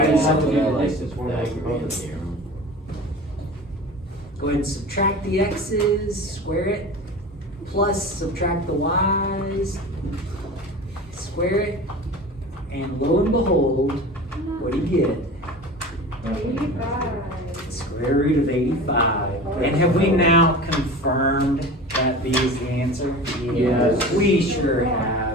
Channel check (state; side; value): normal; both; correlation 0.35